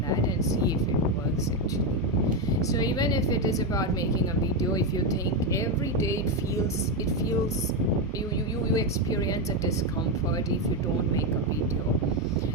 that and see if it works actually. So even if it is about making a video, if you think every day it feels you experience a discomfort if you don't make a video,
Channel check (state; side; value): normal; both; correlation 0.08